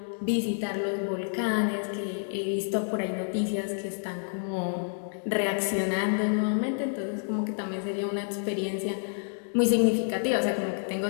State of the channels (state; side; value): silent; right; digital silence